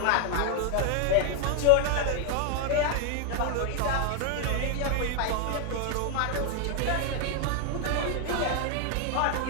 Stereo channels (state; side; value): different; both; correlation 0.00